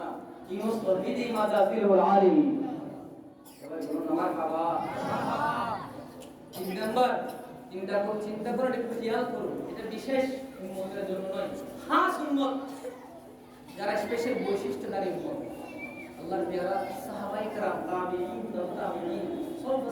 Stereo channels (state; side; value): identical; both; correlation 1.00